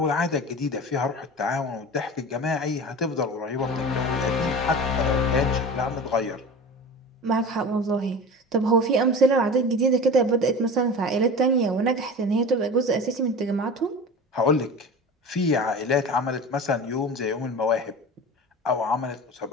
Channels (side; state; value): both; normal; correlation 0.33